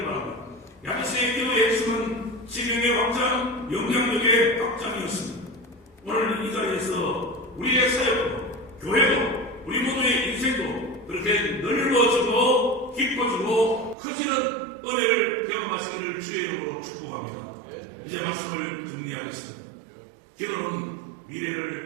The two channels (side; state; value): left; drops out; at 14.0 s